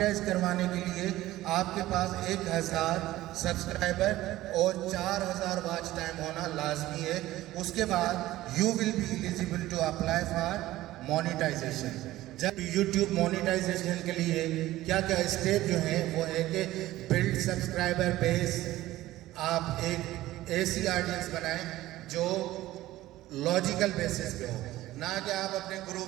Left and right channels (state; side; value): quieter; left; 16.0 dB